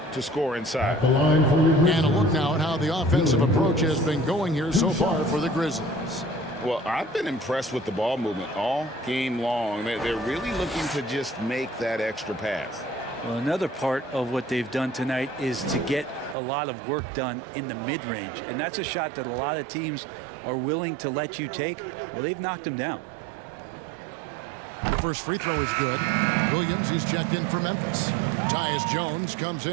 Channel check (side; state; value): left; drops out; at 16.4 s